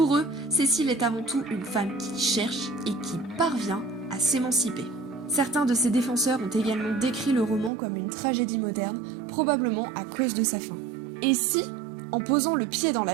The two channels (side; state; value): left; drops out; at 7.7 s